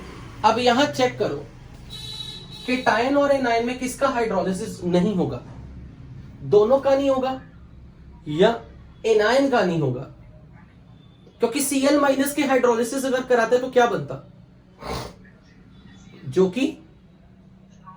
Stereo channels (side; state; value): both; identical; correlation 1.00